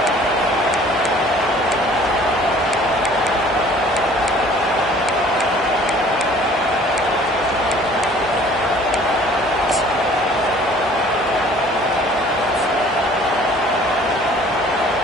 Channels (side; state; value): both; normal; correlation 0.52